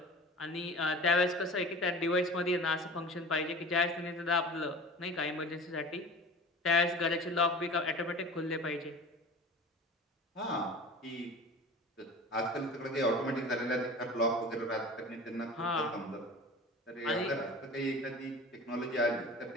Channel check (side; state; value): both; normal; correlation 0.38